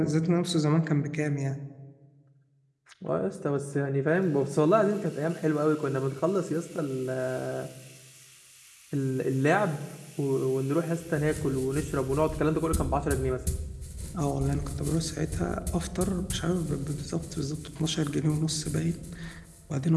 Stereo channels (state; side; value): identical; both; correlation 1.00